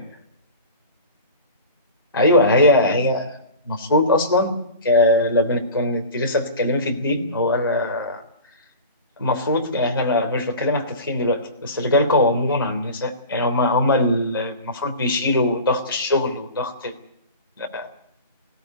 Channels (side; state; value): both; inverted; correlation -0.35